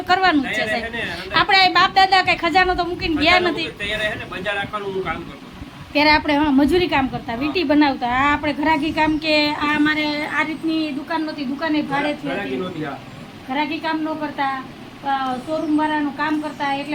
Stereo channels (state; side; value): identical; both; correlation 1.00